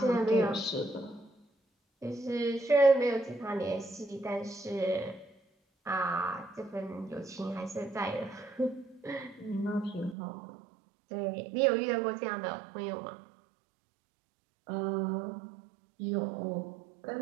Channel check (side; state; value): left; drops out; at 10.2 s